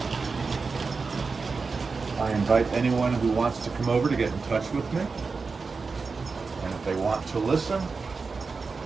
I invite anyone who wants to come over to get in touch with me. And if they want to listen,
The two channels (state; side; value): quieter; left; 4.5 dB